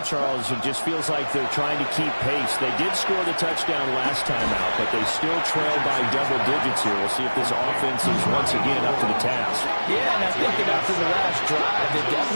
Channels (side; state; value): both; inverted; correlation -1.00